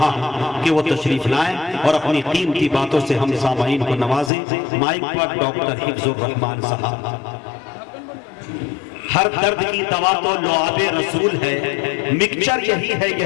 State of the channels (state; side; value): drops out; right; at 4.3 s